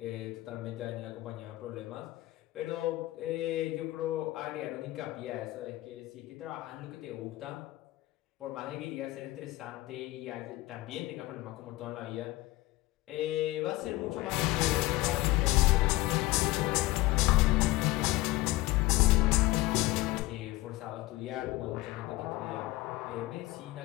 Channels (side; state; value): right; quieter; 18.4 dB